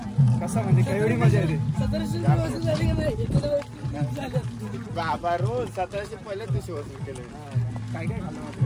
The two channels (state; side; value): identical; both; correlation 1.00